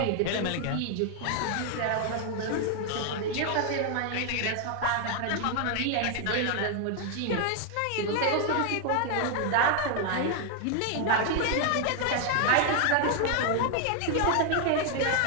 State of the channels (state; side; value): different; both; correlation 0.00